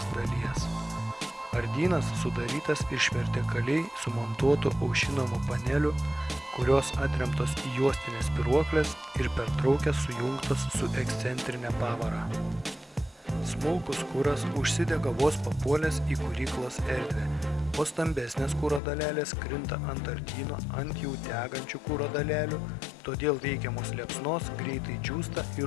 dalies. Ardynas sudarytas iš vertikaliai sumontuotų aušinamų panelių, kurios atremtos į juostinės spyruokles ir pertraukės sujungtos su ekscentrinė pavara. Smulkus kuras užsidega vos papuolęs į kuryklos erdvę, o stambesnės kuro dalelės krinta ant ardyno ant jau degančių kuro dalelių, todėl veikiamos liepsnos greitai džiūsta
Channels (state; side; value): drops out; right; at 18.8 s